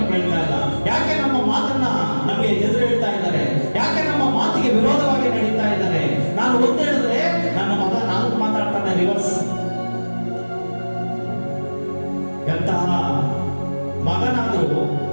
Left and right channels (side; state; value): both; inverted; correlation -1.00